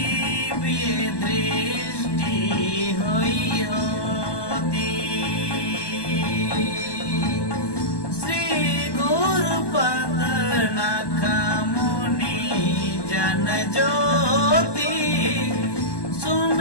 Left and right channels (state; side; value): late; right; 1.2 ms